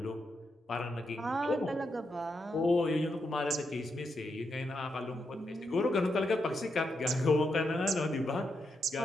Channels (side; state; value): both; normal; correlation 0.83